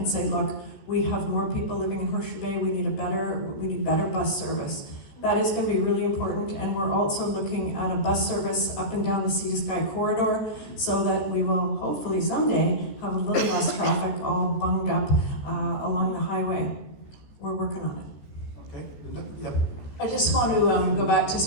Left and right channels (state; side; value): late; right; 14 ms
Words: say, look, we have more people living in Horseshoe Bay, we need better bus service. That is going to be really important, and we're also looking at a bus service up and down the Sea to Sky corridor so that we will hopefully someday have a little less traffic all bunged up along the highway. We're working on it. Okay. Yep. I just want to go back to